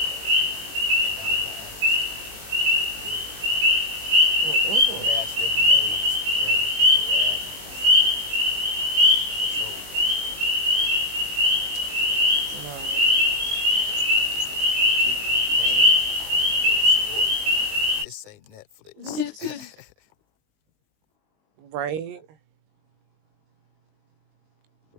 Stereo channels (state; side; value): late; left; 20 ms